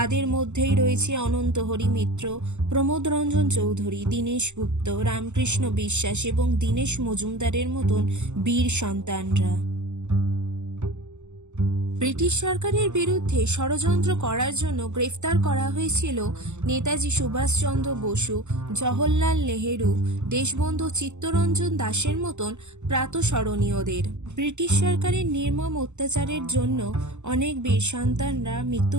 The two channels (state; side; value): late; left; 0.83 ms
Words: মধ্যেই রয়েছে অনন্ত হরি মিত্র, প্রমোদ রঞ্জন চৌধুরী, দীনেশ গুপ্ত, রামকৃষ্ণ বিশ্বাস এবং দীনেশ মজুমদারের মতন বীর সন্তানরা। ব্রিটিশ সরকারের বিরুদ্ধে ষড়যন্ত্র করার জন্য গ্রেফতার করা হয়েছিল নেতাজি সুভাষচন্দ্র বসু, জওহরলাল নেহেরু, দেশবন্ধু চিত্তরঞ্জন দাসের মতন প্রাতঃস্মরণীয়দের। ব্রিটিশ সরকারের নির্মম অত্যাচারের জন্য অনেক বীর সন্তানরা